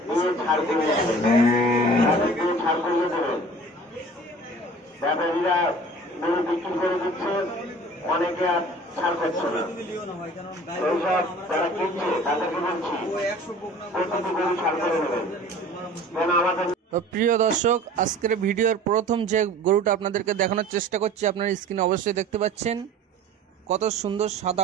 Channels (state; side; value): normal; both; correlation 0.44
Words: অনেকে আর ছাড় করছে না, এইসব যারা কিনছে তাদেরকে বলছি প্রতিটি গরু ছাড় করে নেবেন। তো প্রিয় দর্শক, আজকের ভিডিওর প্রথম যে গরুটা আপনাদেরকে দেখানোর চেষ্টা করছি, আপনারা স্ক্রিনে অবশ্যই দেখতে পাচ্ছেন কত সুন্দর